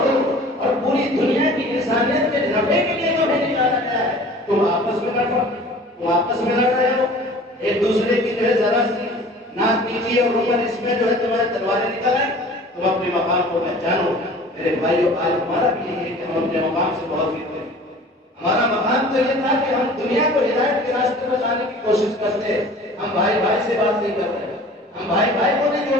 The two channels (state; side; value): normal; both; correlation 0.45